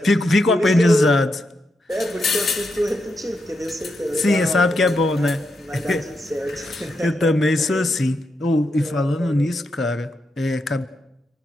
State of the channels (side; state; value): both; normal; correlation 0.84